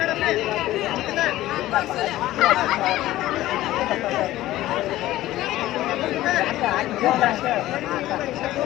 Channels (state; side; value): quieter; right; 15.5 dB